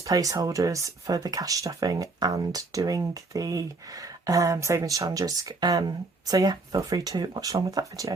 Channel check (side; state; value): left; quieter; 3.6 dB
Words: placeholders for the cash stuffing and doing the savings challenges. So yeah, feel free to watch along with that